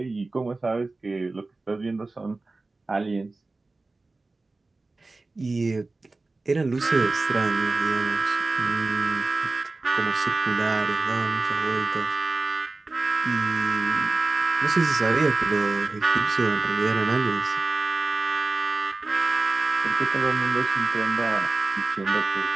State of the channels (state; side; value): quieter; left; 3.4 dB